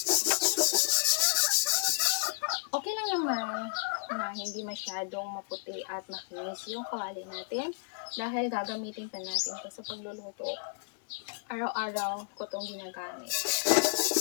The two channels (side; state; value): right; silent; digital silence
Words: Okay lang naman na hindi masyadong maputi at makinis yung kawali natin dahil gagamitin pa natin ito sa pagluluto. Araw-araw ko itong ginagamit.